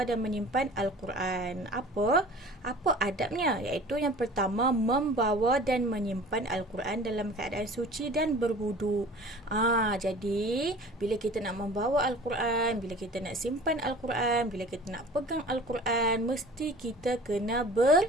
dan menyimpan Al-Quran. Apa adabnya? Iaitu yang pertama, membawa dan menyimpan Al-Quran dalam keadaan suci dan berwudu. Jadi bila kita nak membawa Al-Quran, bila kita nak simpan Al-Quran, bila kita nak pegang Al-Quran, mesti kita kena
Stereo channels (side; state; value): both; normal; correlation 0.43